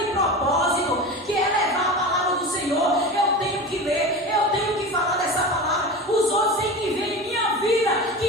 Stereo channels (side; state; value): both; normal; correlation 0.29